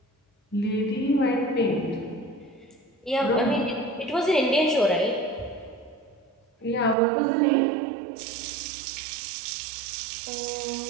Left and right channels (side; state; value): left; drops out; at 7.0 s